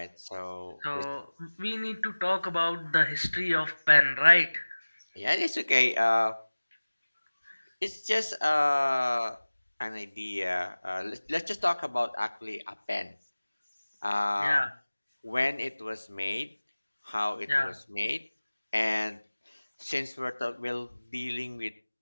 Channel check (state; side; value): inverted; both; correlation -1.00